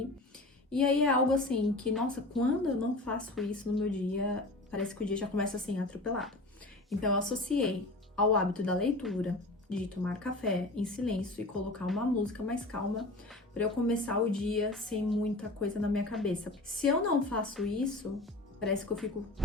E aí é algo assim que, nossa, quando eu não faço isso no meu dia, parece que o dia já começa assim, atropelado. Então eu associei ao hábito da leitura, de tomar café em silêncio e colocar uma música mais calma para eu começar o dia sem muita coisa na minha cabeça. Se eu não faço isso, parece que eu fico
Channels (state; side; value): normal; both; correlation 0.37